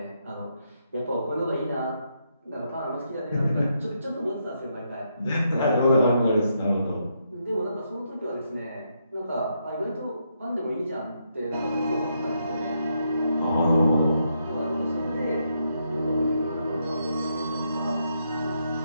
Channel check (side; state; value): both; inverted; correlation -0.79